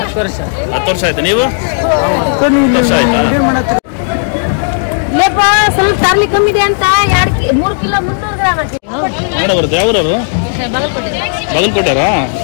ವರ್ಷ. 10 ವರ್ಷ ಆಯ್ತು. ನೀವು? ಇಲ್ಲೇಪ್ಪ ಸ್ವಲ್ಪ ತರ್ಲಿ ಕಮ್ಮಿ ಇದೆ ಅಂತ 3 ಕಿಲೋ 300 ಗ್ರಾಮ್ ಹಾಕಿ ಮಾಡ ಬರುತ್ತೆ. ಯಾವ್ರವು? ಬಾಗಲಕೋಟೆ. ಬಾಗಲಕೋಟೆರಾ?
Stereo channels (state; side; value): silent; right; digital silence